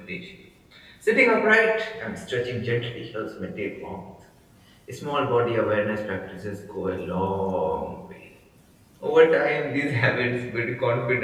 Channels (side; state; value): both; identical; correlation 1.00